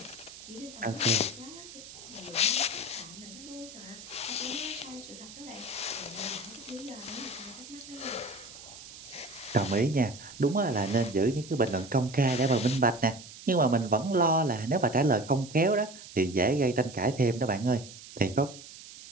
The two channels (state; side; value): noise; right; hiss, 16 dB below the sound